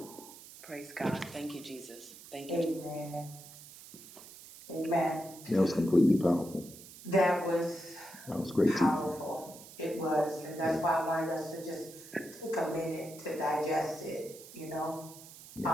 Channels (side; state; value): right; noise; hiss, 17 dB below the sound